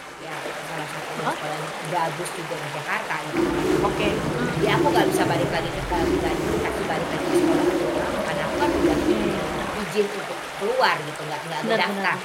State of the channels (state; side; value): identical; both; correlation 1.00